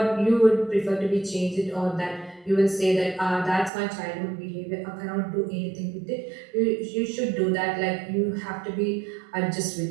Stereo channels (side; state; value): left; drops out; at 3.7 s